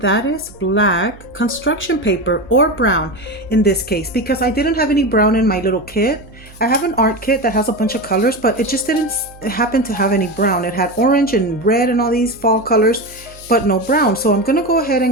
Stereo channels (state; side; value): noise; right; hum, 22 dB below the sound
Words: is black construction paper, or brown in this case, because I didn't have any brown in my little kit. I have an art kit that has a bunch of colors, but it just didn't happen to have any brown. It had orange and red and all these fall colors, but no brown. So I'm gonna go ahead